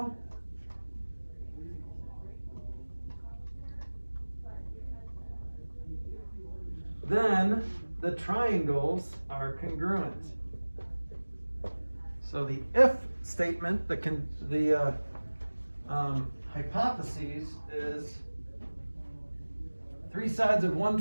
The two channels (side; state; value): both; inverted; correlation -1.00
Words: then the triangles are congruent. So the if statement, the hypothesis is 3 sides of one